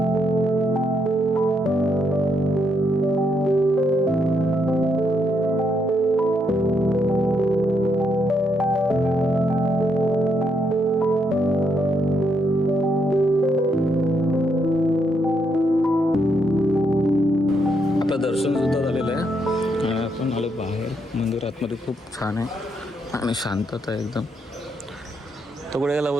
छान आहे आणि शांतता आहे एकदम. तो कुठे गेला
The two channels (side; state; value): both; normal; correlation 0.77